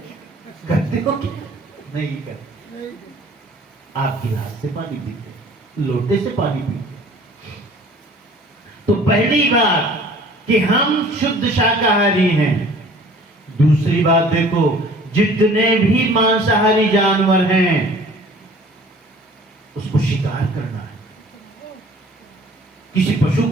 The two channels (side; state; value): both; normal; correlation 0.50